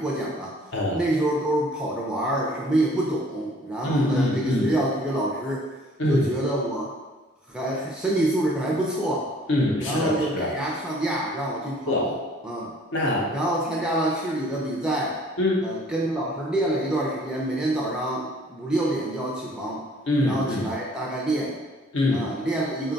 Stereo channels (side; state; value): both; normal; correlation 0.56